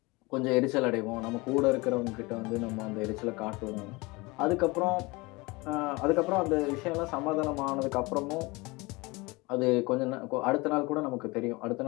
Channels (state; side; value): quieter; right; 24.5 dB